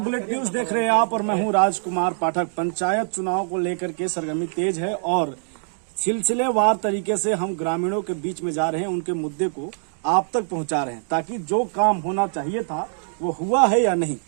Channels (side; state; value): left; silent; digital silence